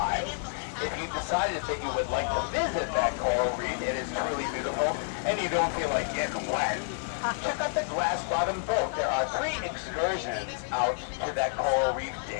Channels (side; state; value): right; silent; digital silence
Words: If you decided that you would like to visit that coral reef, it is truly beautiful, and you don't feel like getting wet, check out the Glass Bottom Boat. There are 3 excursions out to that coral reef